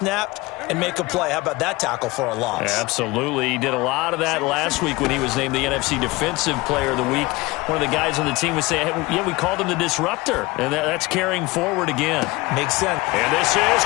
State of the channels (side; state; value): right; quieter; 22.2 dB